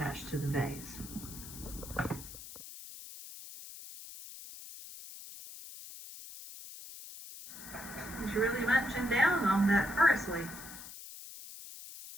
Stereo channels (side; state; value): left; noise; hiss, 13 dB below the sound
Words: to the vase. He's really munching down on that parsley.